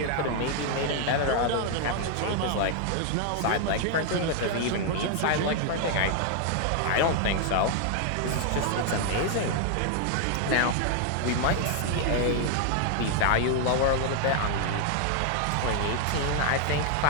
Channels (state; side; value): different; both; correlation 0.00